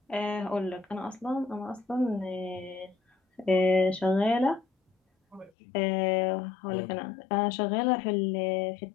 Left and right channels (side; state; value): right; drops out; at 5.5 s